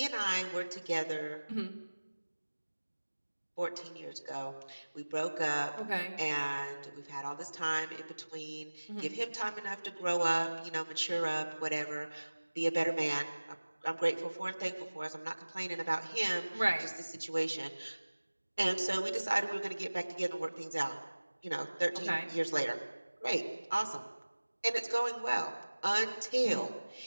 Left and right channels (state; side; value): inverted; both; correlation -1.00